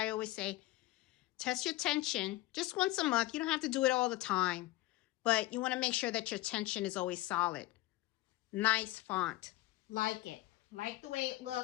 I always say, test your tension just once a month. You don't have to do it all the time, but you want to make sure that your tension is always solid. Nice font. Like it. Like the way it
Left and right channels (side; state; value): right; quieter; 17.7 dB